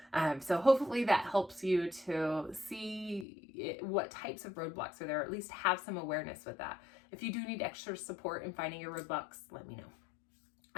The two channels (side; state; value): right; drops out; at 3.2 s